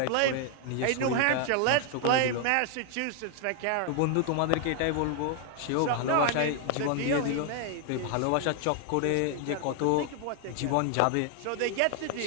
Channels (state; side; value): different; both; correlation 0.00